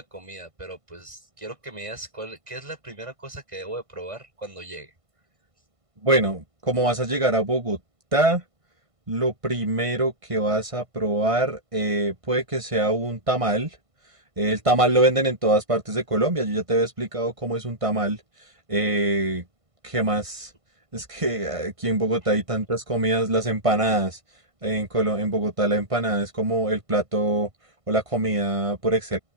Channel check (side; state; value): left; late; 1.5 ms